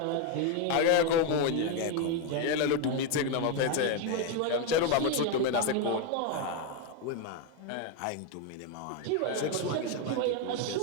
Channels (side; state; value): both; different; correlation 0.02